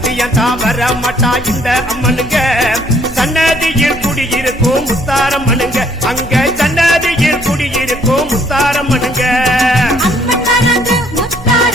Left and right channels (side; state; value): right; noise; hum, 17 dB below the sound